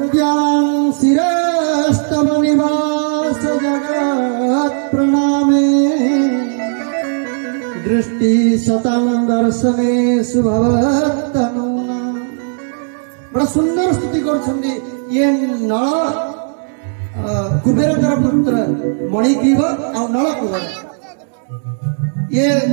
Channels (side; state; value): left; silent; digital silence